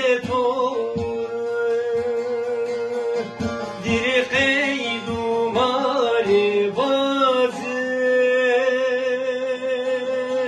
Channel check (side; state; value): both; identical; correlation 1.00